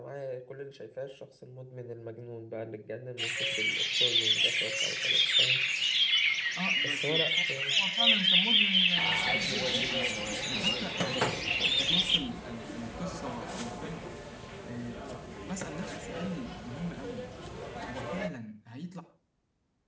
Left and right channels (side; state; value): both; identical; correlation 1.00